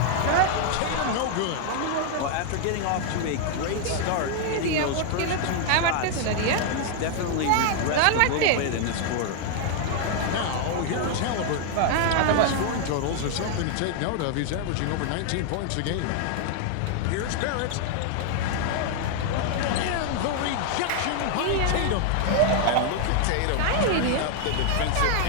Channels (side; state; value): both; different; correlation 0.00